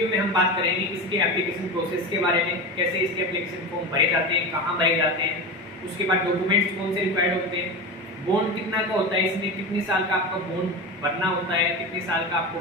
में हम बात करेंगे इसके एप्लीकेशन प्रोसेस के बारे में, कैसे इसके एप्लीकेशन फॉर्म भरे जाते हैं, कहाँ भरे जाते हैं, उसके बाद डॉक्यूमेंट्स कौन से रिक्वायर्ड होते हैं, बॉन्ड कितना का होता है, इसमें कितने साल का आपका बॉन्ड भरना होता है, कितने साल का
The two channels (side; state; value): both; normal; correlation 0.24